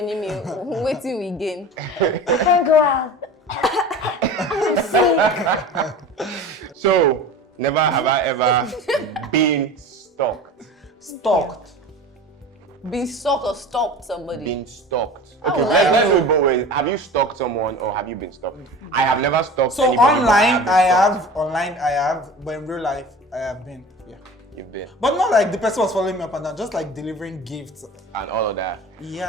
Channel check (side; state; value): both; normal; correlation 0.36